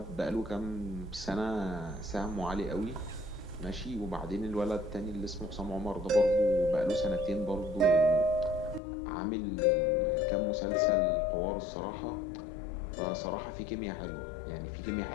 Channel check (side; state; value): right; drops out; at 8.8 s